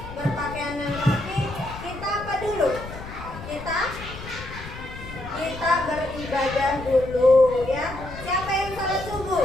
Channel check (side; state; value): left; noise; rumble, 12 dB below the sound